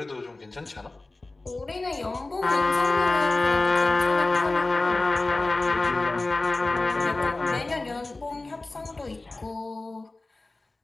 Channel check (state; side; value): quieter; right; 3.1 dB